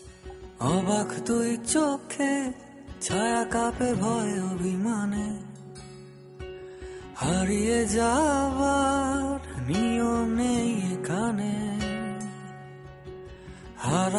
অবাক তুই চোখে, ছায়া কাঁপে ভয় অভিমানে। হারিয়ে যাওয়ার নিয়ম নেই এখানে।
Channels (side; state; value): both; identical; correlation 1.00